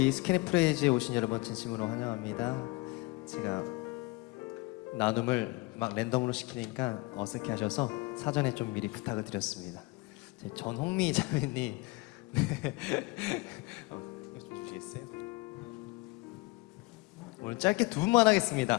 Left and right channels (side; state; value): right; quieter; 23.6 dB